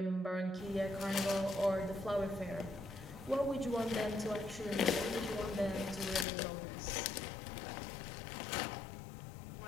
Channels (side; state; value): right; drops out; at 6.2 s